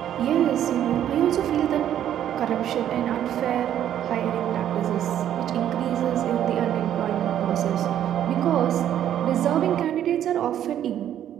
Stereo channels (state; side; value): quieter; left; 10.7 dB